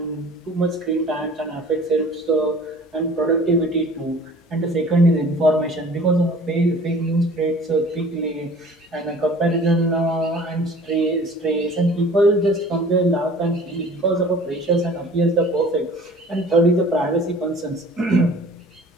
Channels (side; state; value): both; normal; correlation 0.47